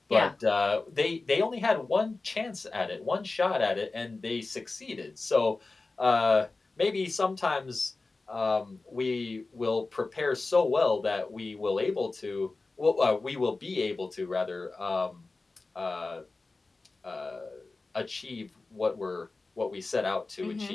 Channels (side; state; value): right; quieter; 3.6 dB